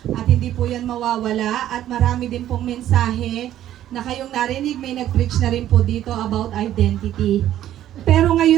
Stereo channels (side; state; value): left; quieter; 12.2 dB